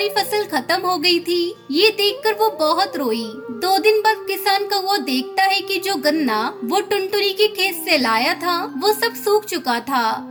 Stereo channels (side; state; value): both; identical; correlation 1.00